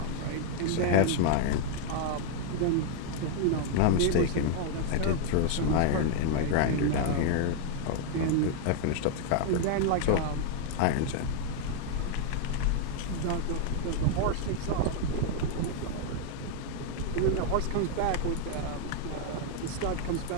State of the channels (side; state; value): both; different; correlation 0.00